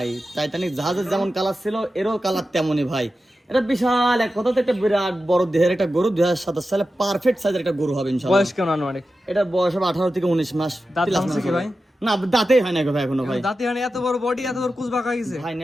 টাইটানিক জাহাজের যেমন কালার ছিল এরও কালার তেমনই ভাই। এটা বিশাল এক কথাতে একটা বিরাট বড় দেহের একটা গরু, 2027 সালে পারফেক্ট সাইজের একটা গরু হবে ইনশাআল্লাহ। বয়স কেমন আনুমানিক? এটা বয়স হবে 18 থেকে 19 মাস। দাঁত ভাঙছে কি ভাই? না, দাঁতেই হয় না ভাই এখনো ভাই। দাঁতে হয় না, এত বড় বডি, এত বড় কোস্ট বাঁকা হয়ে গেছে ভাই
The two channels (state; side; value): normal; both; correlation 0.92